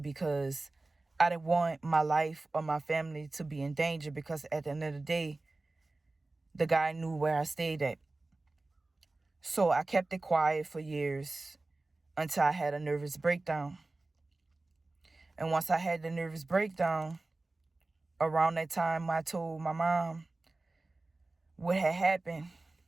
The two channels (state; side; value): quieter; left; 3.1 dB